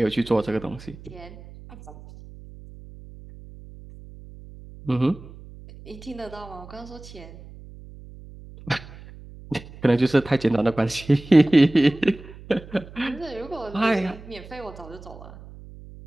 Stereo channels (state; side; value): noise; right; hum, 18 dB below the sound